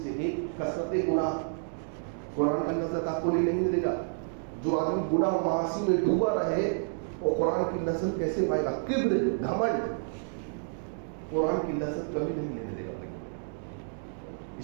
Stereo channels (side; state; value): left; silent; digital silence